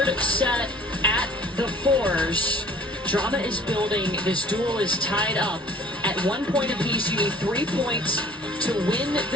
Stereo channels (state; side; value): normal; both; correlation 0.51